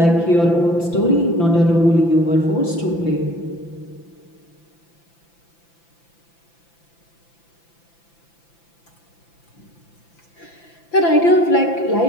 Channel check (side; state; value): right; late; 5.9 ms